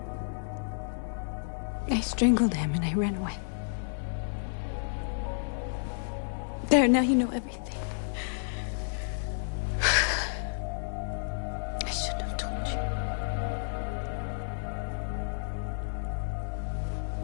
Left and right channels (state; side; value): silent; right; digital silence